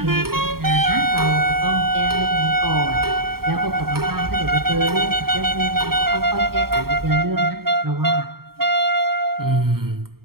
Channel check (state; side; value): late; left; 0.93 ms